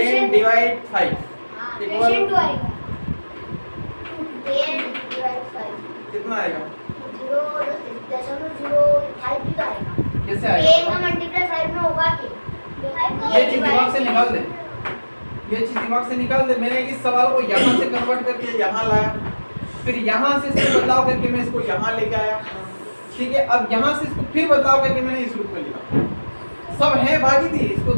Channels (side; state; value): both; inverted; correlation -1.00